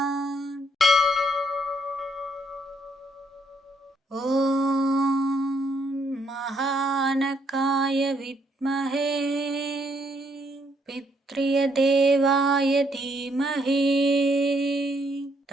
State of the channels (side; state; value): both; normal; correlation 0.71